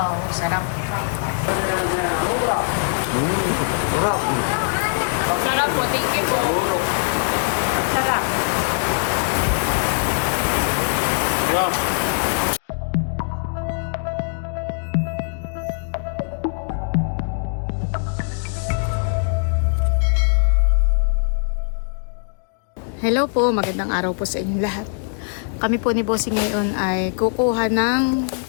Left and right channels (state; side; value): silent; right; digital silence